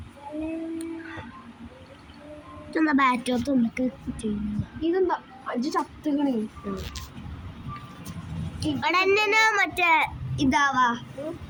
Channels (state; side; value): identical; both; correlation 1.00